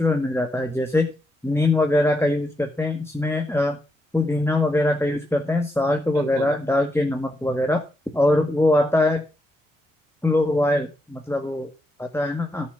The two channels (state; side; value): normal; both; correlation 0.82